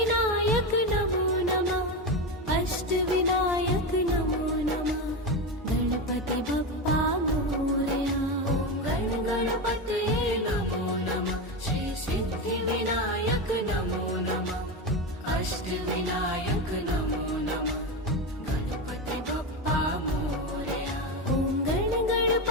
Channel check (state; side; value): normal; both; correlation 0.16